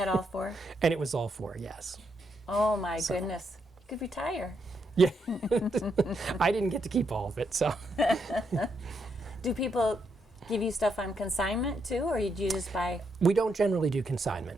all 4? and it was all 4, yes. Oh my goodness. You could retire. Yeah, I didn't get to keep all of it, so. Do people give you stuff on consignment too, or do you just buy? We don't generally do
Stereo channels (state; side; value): normal; both; correlation 0.79